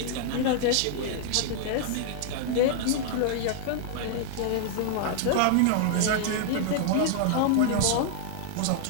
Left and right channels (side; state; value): both; different; correlation -0.01